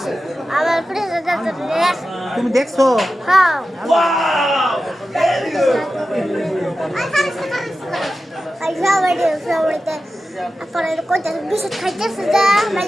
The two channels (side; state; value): both; normal; correlation 0.93